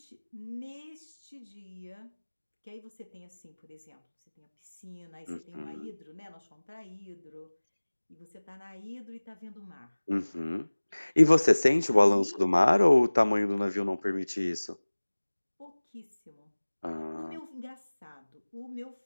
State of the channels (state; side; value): inverted; both; correlation -1.00